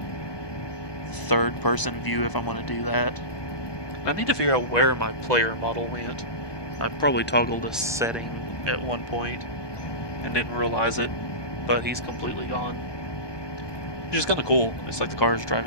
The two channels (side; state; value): right; late; 1.2 ms